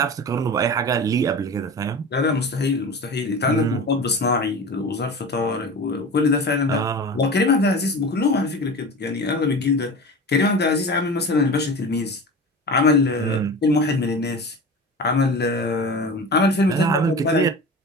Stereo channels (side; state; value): both; normal; correlation 0.32